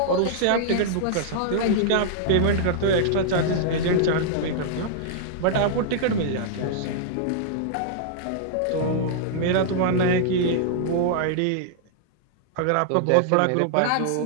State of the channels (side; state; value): both; different; correlation -0.01